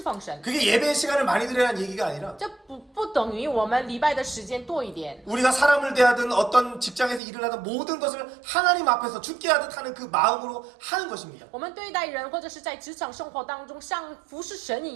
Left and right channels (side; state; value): left; drops out; at 7.2 s